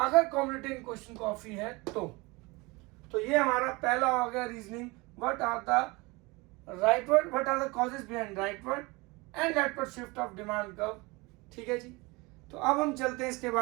कॉमोडिटी इन क्वेश्चन कॉफी है तो ये हमारा पहला हो गया reasoning, what are the rightward, what are the causes behind rightward and leftward shift of demand curve, ठीक है जी। तो अब हम चलते हैं इसके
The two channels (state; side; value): quieter; left; 24.9 dB